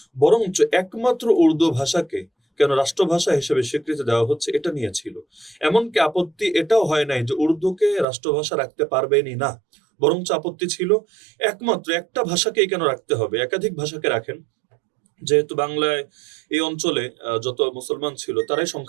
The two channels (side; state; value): left; drops out; at 8.1 s